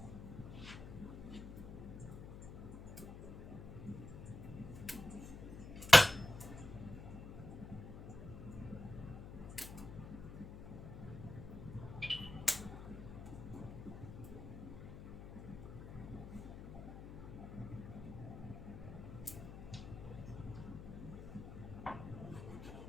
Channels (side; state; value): left; noise; hum, 11 dB below the sound